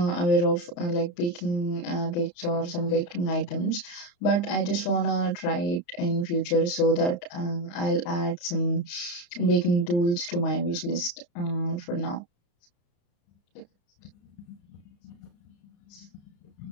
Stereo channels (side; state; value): right; late; 34 ms